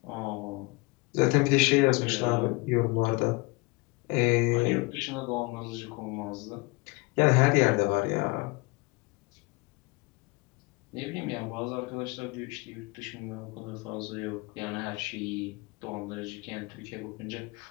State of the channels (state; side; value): quieter; right; 25.7 dB